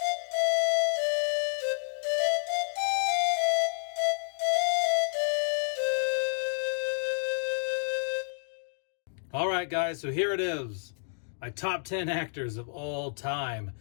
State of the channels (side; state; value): right; silent; digital silence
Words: All right, guys, so here it is. My top 10 actors of all time.